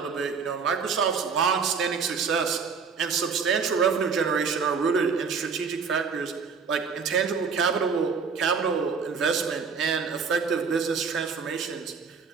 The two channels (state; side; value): quieter; left; 5.6 dB